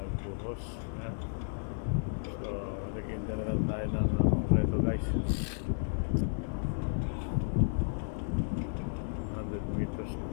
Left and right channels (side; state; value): right; silent; 56 dB below the other